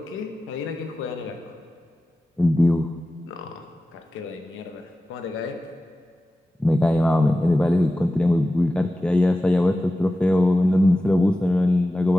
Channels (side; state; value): both; normal; correlation 0.95